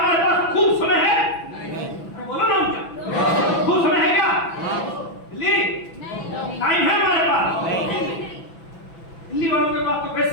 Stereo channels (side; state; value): right; late; 6.0 ms